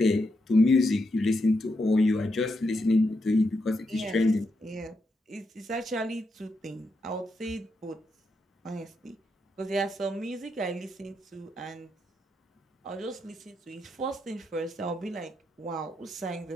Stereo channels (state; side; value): normal; both; correlation 0.83